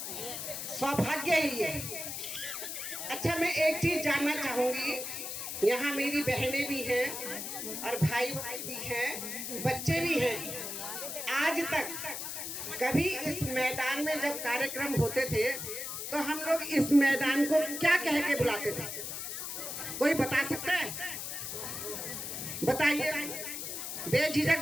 सौभाग्य ही है। अच्छा, मैं एक चीज जानना चाहूंगी, यहाँ मेरी बहनें भी हैं और भाई भी हैं, बच्चे भी हैं। आज तक कभी इस मैदान में जब कार्यक्रम होते थे तो हम लोग इस मैदान को क्या कह के बुलाते थे? कोई बता सकता है? बताइए,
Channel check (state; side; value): noise; left; hiss, 5 dB below the sound